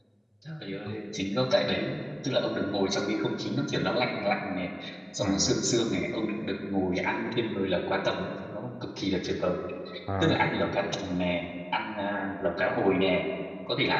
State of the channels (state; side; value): identical; both; correlation 1.00